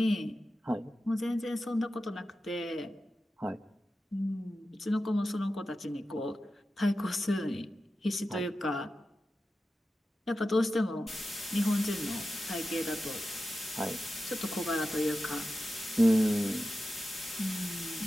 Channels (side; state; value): both; normal; correlation 0.92